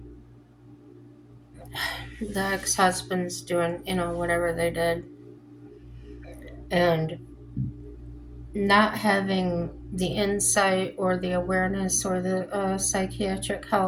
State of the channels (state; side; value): identical; both; correlation 1.00